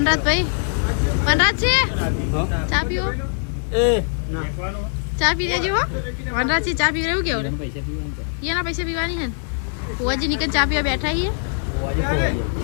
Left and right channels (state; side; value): silent; right; digital silence